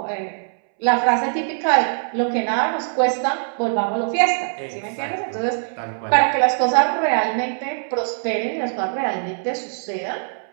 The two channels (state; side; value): silent; left; 64 dB below the other